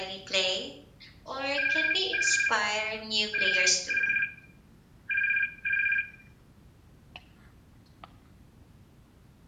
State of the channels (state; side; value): identical; both; correlation 1.00